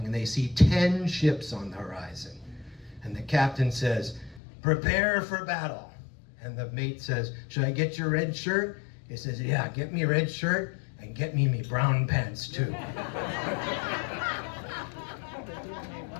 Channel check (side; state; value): right; drops out; at 4.4 s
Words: and they see 10 ships on the horizon. And the captain says, "Prepare for battle." And the mate says, "Should I get your red shirt?" He says, "Yeah, get me a red shirt and get me brown pants too."